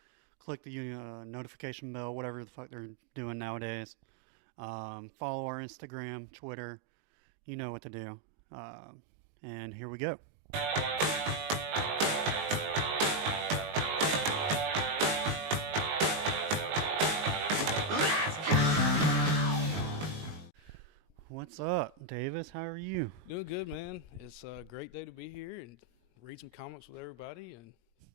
click the notification bell, whatever the fuck they're doing nowadays. Follow our Instagram, Twitter, you know what to do. And here we go. What's up, Davis? How are you? Doing good, man. It's a great day to be here and read some comics with everybody and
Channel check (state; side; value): late; left; 19 ms